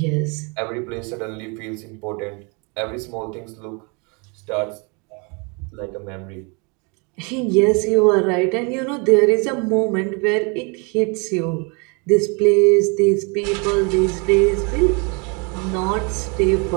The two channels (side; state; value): left; quieter; 32.2 dB